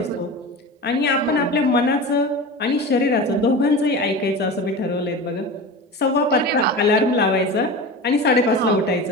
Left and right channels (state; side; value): normal; both; correlation 0.30